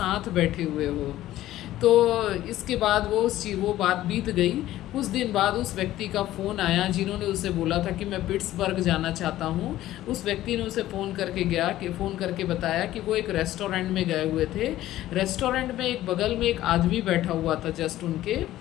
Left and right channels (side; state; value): right; quieter; 14.5 dB